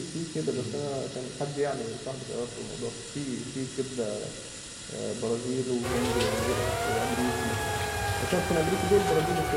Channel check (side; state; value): both; identical; correlation 1.00